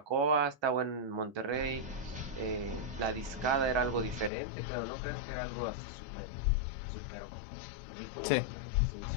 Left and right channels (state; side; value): drops out; right; at 4.3 s